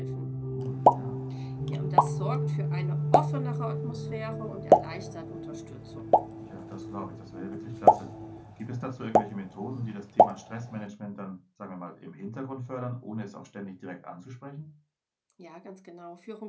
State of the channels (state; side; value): identical; both; correlation 1.00